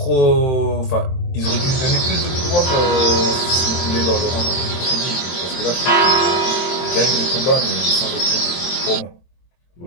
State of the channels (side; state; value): right; late; 23 ms